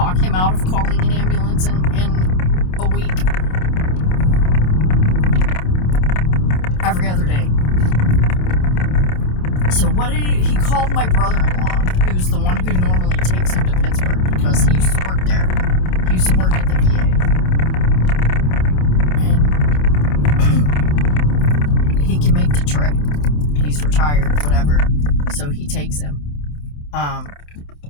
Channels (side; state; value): right; late; 27 ms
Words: him out of calling an ambulance in a week? Every other day. So what did he called my brother-in-law, who's the one who normally takes him to Pittsburgh because he used to work there. He used to work at the VA. And he can make the trip. He's retired, whatever. So he takes him.